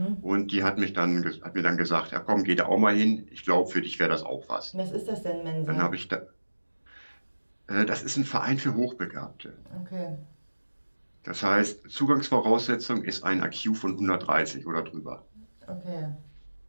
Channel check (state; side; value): inverted; both; correlation -1.00